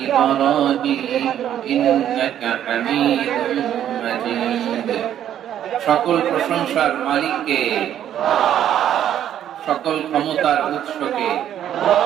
إبراهيم إنك حميد مجيد সকল প্রশংসার মালিককে, সকল ক্ষমতার উৎসকে,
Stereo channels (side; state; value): left; quieter; 10.6 dB